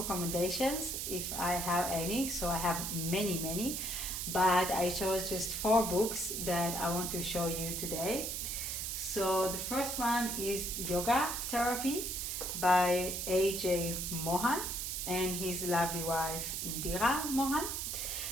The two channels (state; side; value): noise; right; hiss, 3 dB below the sound